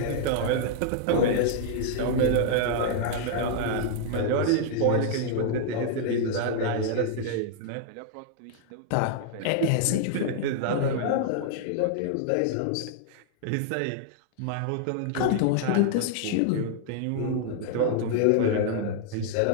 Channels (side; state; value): both; different; correlation -0.01